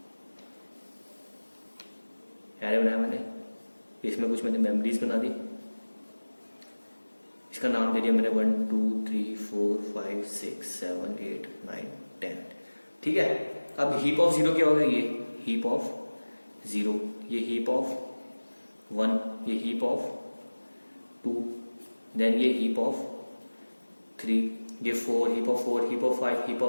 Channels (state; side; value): inverted; both; correlation -1.00